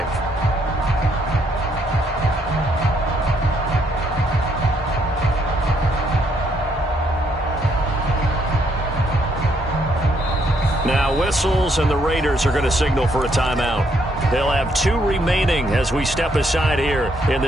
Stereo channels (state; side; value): normal; both; correlation 0.72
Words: Now whistles, and the Raiders are going to signal for a timeout. They'll have 2 remaining as we step aside here in